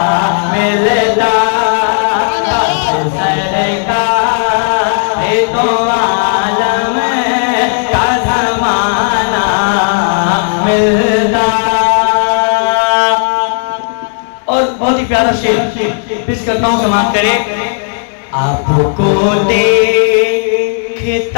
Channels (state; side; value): silent; right; digital silence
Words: मिलता। काश सरकार दो आलम का ज़माना मिलता। और बहुत ही प्यारा शेर पेश करता हूँ, समाप्त करें। आपको